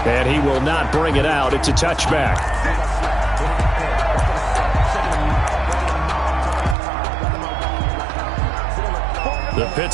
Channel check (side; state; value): left; drops out; at 6.8 s